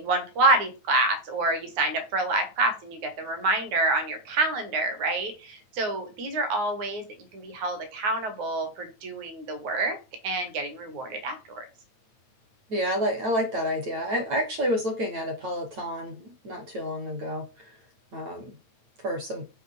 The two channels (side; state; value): left; late; 9.0 ms